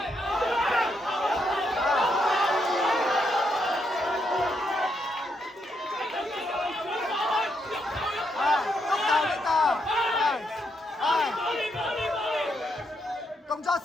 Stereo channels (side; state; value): both; normal; correlation 0.78